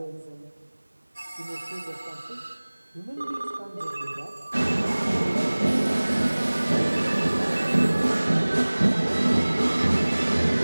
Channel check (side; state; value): both; inverted; correlation -1.00